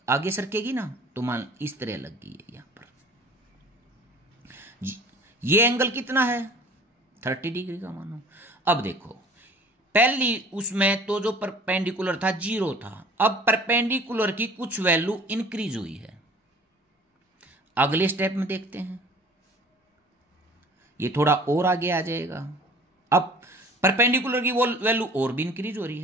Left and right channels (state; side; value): normal; both; correlation 0.48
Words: आगे सरकेगी ना, तो मान इस तरह लग गई है यहां पर, ये एंगल कितना है 30 डिग्री का मानो। अब देखो पहली उसमें तो जो परपेंडिकुलर था 0 था, अब परपेंडिकुलर की कुछ वैल्यू इंक्रीज हुई है। अगले स्टेप में देखते हैं, ये थोड़ा और आगे आ जाएगा, अब परपेंडिकुलर की वो वैल्यू और भी इंक्रीज हो रही